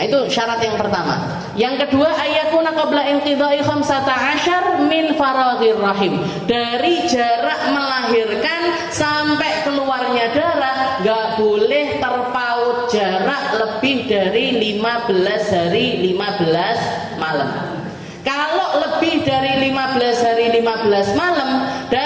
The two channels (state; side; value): identical; both; correlation 1.00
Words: itu syarat yang pertama. Yang kedua, ayakuna qabla inqidha'i 15 min faraghir rahim. Dari jarak melahirkan sampai keluarnya darah gak boleh terpaut jarak lebih dari 15 hari 15 malam. Kalau lebih dari 15 hari 15 malam,